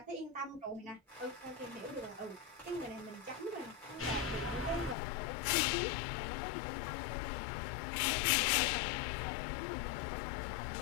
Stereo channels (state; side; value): drops out; right; at 5.0 s